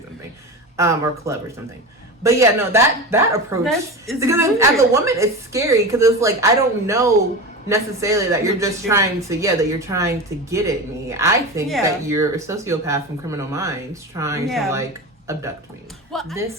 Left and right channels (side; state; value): both; normal; correlation 0.26